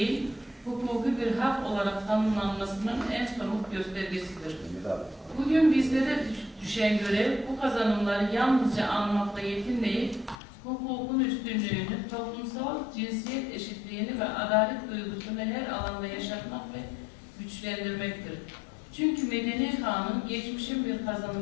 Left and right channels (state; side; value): drops out; right; at 10.4 s